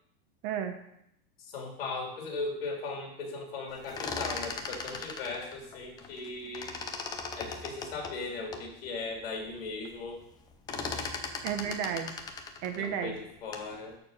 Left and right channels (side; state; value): both; normal; correlation 0.11